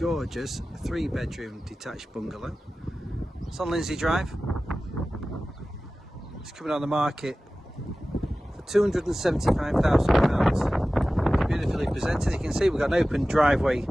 3-bedroom detached bungalow. It's on Lindsey Drive. It's coming on the market for £275,000. It's beautifully presented. You can see we've got an open driveway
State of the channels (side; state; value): both; normal; correlation 0.96